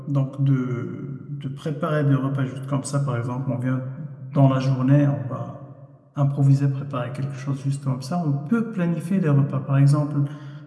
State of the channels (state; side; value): identical; both; correlation 1.00